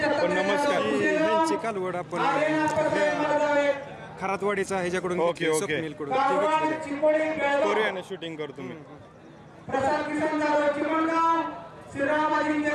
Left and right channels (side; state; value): both; identical; correlation 1.00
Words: नमस्कार। चिकालवड आपण खरातवाडीचा ह्याच्याकडून करूया ना शूटिंग करू तुम्ही। प्रसाद किसन जाधव चिमणगाव, श्रीराम अजिंक्य